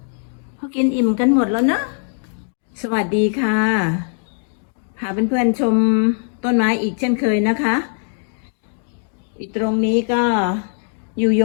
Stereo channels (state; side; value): silent; right; digital silence